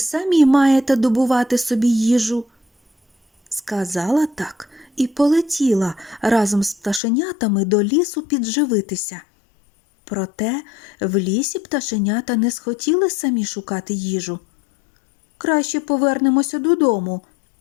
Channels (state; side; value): drops out; right; at 7.0 s